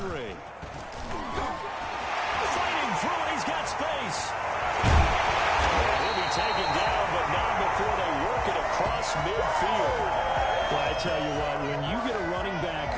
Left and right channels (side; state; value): both; identical; correlation 1.00